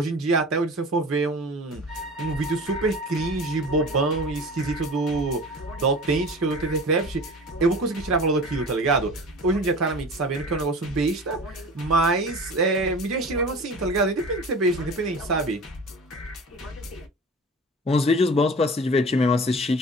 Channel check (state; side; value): normal; both; correlation 0.37